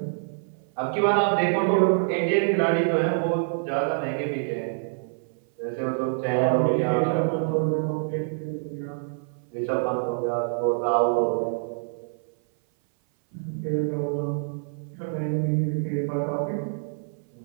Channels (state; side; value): silent; left; 58 dB below the other